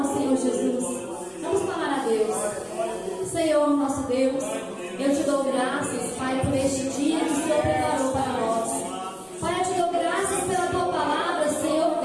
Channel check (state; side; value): identical; both; correlation 1.00